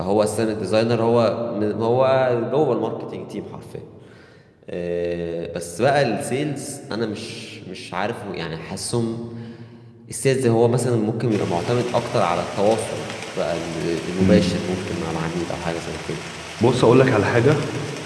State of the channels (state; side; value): identical; both; correlation 1.00